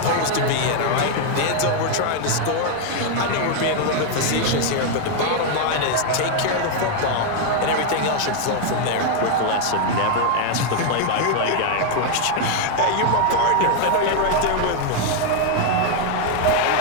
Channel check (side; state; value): both; different; correlation 0.00